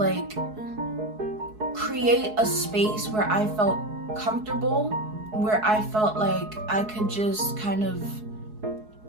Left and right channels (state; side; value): late; left; 4.7 ms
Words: create a space where I felt comfortable, where I felt like I could just kind of,